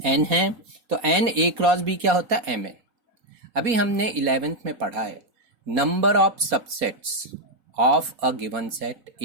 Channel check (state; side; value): late; left; 4.2 ms